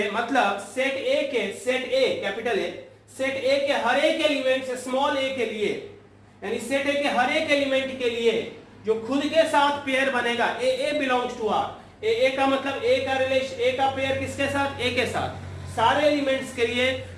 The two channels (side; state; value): both; identical; correlation 1.00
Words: मतलब सेट ए के, set A capital A, set A के हर एक एलिमेंट से स्मॉल ए के लिए, यानी सेट ए के हर एक एलिमेंट के लिए जो खुद के साथ पेयर बनेगा, ए बिलोंग्स टू आर। ए का मतलब ए का रिलेशन, ए का पेयर किसके साथ, ए के साथ। सारे एलिमेंट्स के लिए